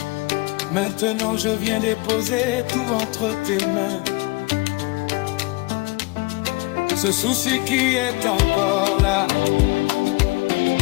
Maintenant je viens déposer tout entre tes mains. Ce souci qui est encore là,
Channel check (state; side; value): quieter; right; 24.9 dB